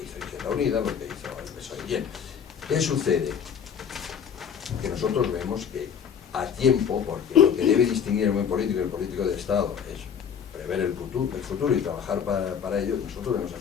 hizo Izquierda Unida, lo que hizo el PSOE. Bien, ¿qué sucede? Que nosotros vemos que a tiempo, porque lo que debe distinguir el buen político y el político de Estado es prever el futuro y trabajar para ello, nosotros vemos a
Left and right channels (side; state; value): right; quieter; 7.7 dB